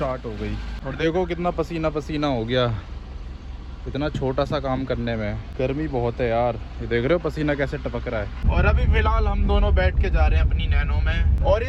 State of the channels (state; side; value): identical; both; correlation 1.00